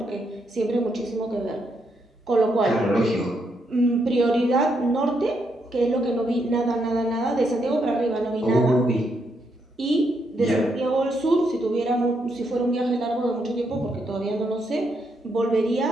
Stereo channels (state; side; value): normal; both; correlation 0.78